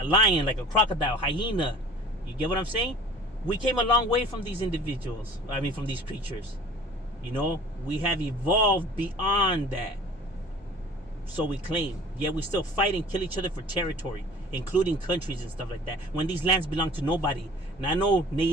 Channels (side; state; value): both; normal; correlation 0.45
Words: lion, like a crocodile, hyena. You get what I'm saying? We came a long way from these individuals. From these creatures. We have evolved beyond that. So we claim. Yet we still fight and kill each other for territory, including countries and stuff like that, when these lands belong to nobody. Not no